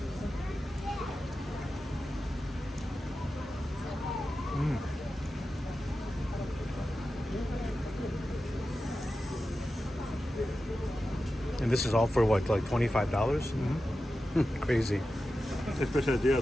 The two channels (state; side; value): normal; both; correlation 0.92